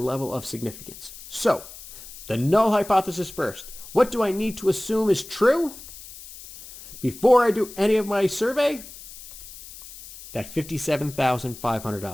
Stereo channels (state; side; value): noise; left; hiss, 16 dB below the sound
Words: of significance. So, the null hypothesis first. What do I need to assume is true before I do any of my survey? That